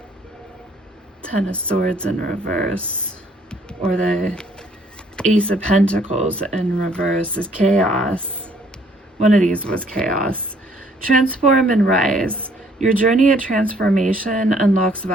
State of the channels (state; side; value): normal; both; correlation 0.63